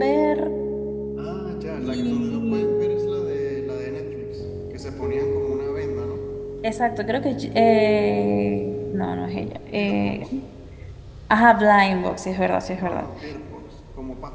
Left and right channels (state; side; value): identical; both; correlation 1.00